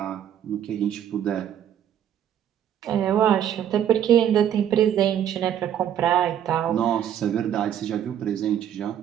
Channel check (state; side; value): quieter; left; 10.0 dB